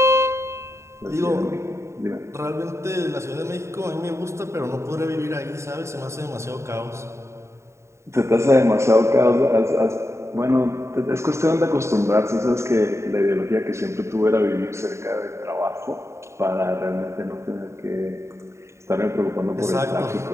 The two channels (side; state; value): left; late; 0.14 ms